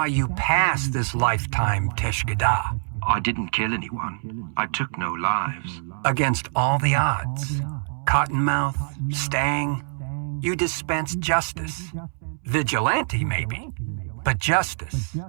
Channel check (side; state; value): left; silent; 62 dB below the other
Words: you passed this lifetime Teshkada. I didn't kill anyone. I took no lives. Against all the odds. Cottonmouth, Stang, you dispensed justice. Vigilante, maybe. But justice.